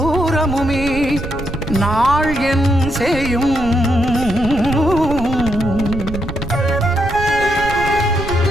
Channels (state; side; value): noise; right; rumble, 9 dB below the sound